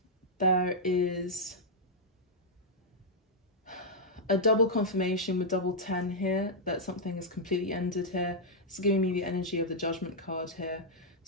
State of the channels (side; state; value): both; normal; correlation -0.06